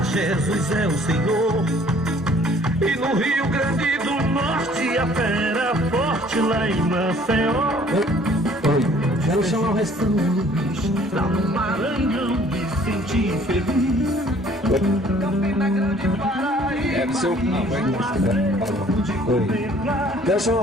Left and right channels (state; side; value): normal; both; correlation 0.56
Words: Jesus é o Senhor. E no Rio Grande do Norte a fera forte lá em Maceió. Quero chamar o restante. Lá no Maranhão me senti feliz. Campina Grande, Paraíba. É do seu. Quero chamar o